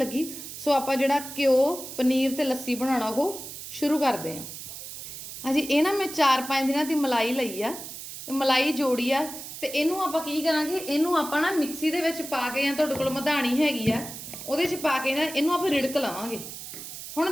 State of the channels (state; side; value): noise; right; hiss, 10 dB below the sound